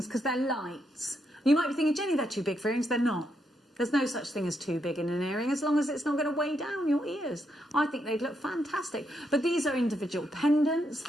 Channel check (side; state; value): both; normal; correlation 0.79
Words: because they're light. You might be thinking, Jenny, they're too big for earrings. They're not. There's no such thing as too big in an earring as long as it's not going to weigh down your ears. I think they'd look fantastic. But these are individual pendants